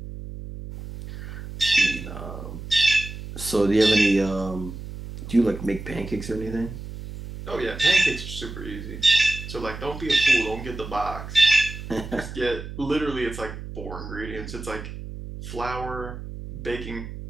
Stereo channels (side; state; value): right; noise; hum, 10 dB below the sound